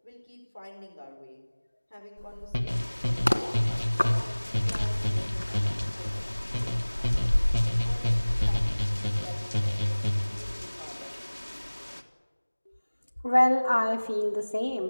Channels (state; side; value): inverted; both; correlation -1.00